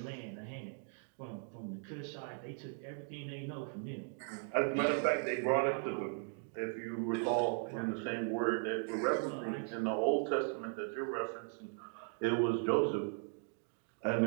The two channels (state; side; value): silent; left; 53 dB below the other